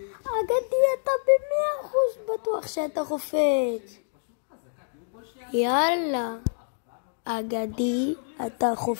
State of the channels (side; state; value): right; silent; digital silence